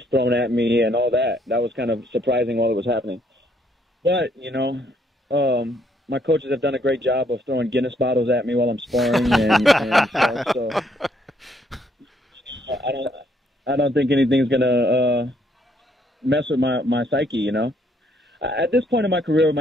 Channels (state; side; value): normal; both; correlation 0.69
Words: thrown at me and all that. That was kind of surprising while it was happening. But, you know, my coaches have done a great job of throwing Guinness bottles at me while I'm sparring and stuff. So I don't think anything's going to mess with my psyche, you know. At this point in my career,